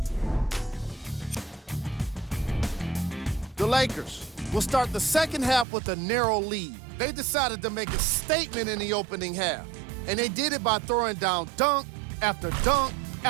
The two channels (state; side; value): drops out; left; at 5.7 s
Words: The Lakers will start the second half with a narrow lead. They decided to make a statement in the opening half, and they did it by throwing down dunk after dunk